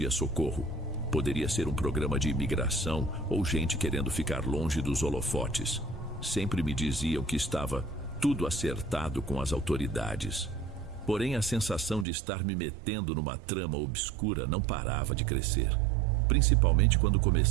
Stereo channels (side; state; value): left; drops out; at 12.1 s